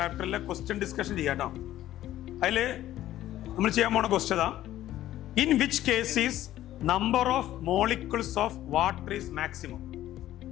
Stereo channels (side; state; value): right; quieter; 13.6 dB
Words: ക്വസ്റ്റ്യൻ ഡിസ്കഷൻ ചെയ്യാട്ടോ. അതിൽ നമ്മൾ ചെയ്യാൻ പോണ question in which case is number of molecules of water is maximum.